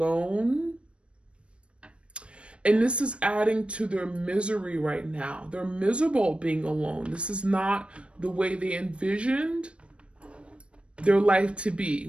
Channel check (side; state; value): left; late; 0.059 ms